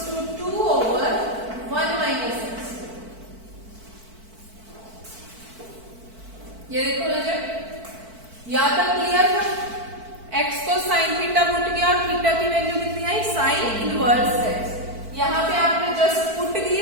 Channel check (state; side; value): late; left; 4.5 ms